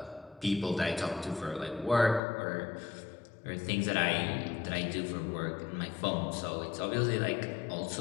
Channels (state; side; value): drops out; right; at 2.2 s